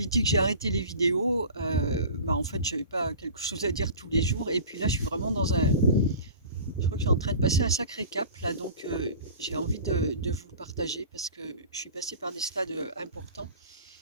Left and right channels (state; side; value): inverted; both; correlation -0.40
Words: dit que j'ai arrêté les vidéos. En fait, j'avais pas quelque chose à dire tous les jours. Et puis là, je suis vraiment dans un. Je crois que je suis en train de passer un sacré cap là, donc j'ai envie de vous le partager parce que je suis passée par des stades importants.